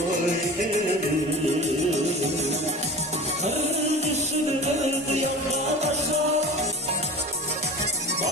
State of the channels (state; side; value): normal; both; correlation 0.35